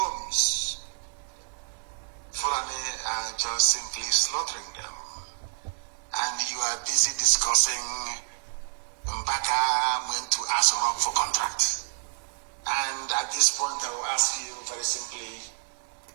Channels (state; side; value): silent; left; digital silence